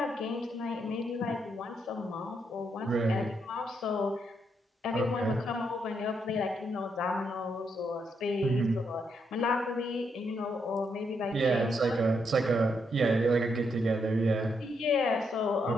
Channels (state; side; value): normal; both; correlation 0.78